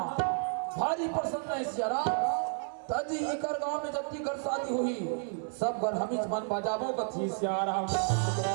भारी प्रसन्न है सियाराम तजी इकर गांव में जति घर शादी हुई सब घर हमीज मन बजाबो कथी सियाराम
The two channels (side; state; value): left; silent; 57 dB below the other